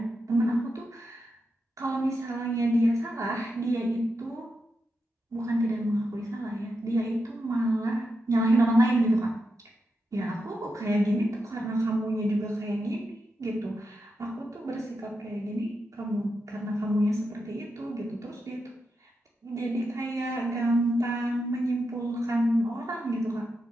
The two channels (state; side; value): normal; both; correlation 0.87